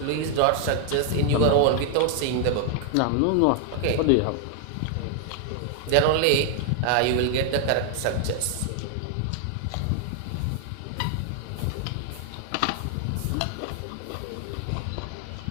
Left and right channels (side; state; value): both; different; correlation 0.00